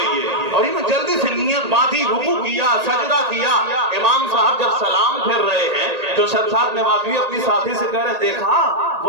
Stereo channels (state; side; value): late; left; 1.8 ms